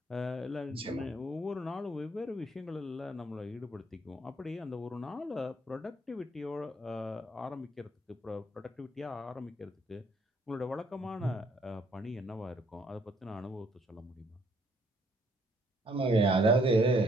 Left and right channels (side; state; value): both; normal; correlation 0.66